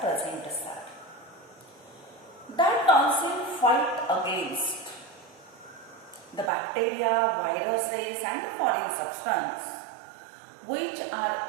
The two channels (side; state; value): left; drops out; at 6.5 s